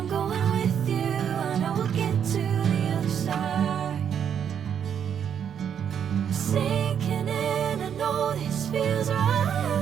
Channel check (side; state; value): left; quieter; 8.4 dB